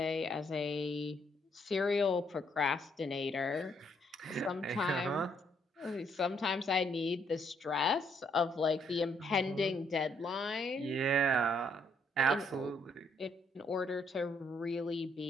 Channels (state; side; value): normal; both; correlation 0.71